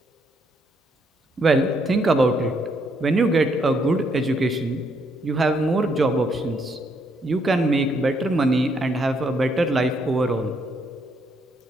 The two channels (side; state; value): both; normal; correlation 0.73